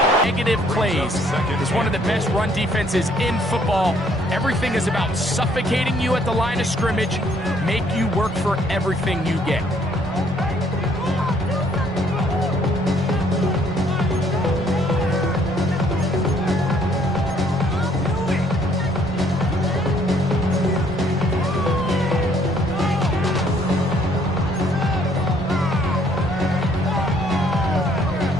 Negative plays is one of the best run defenses in football. Everything is about suffocating you at the line of scrimmage, make you work for everything you get.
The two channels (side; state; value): both; normal; correlation 0.64